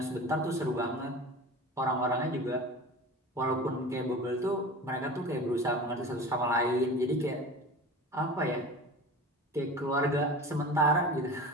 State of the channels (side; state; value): both; normal; correlation 0.35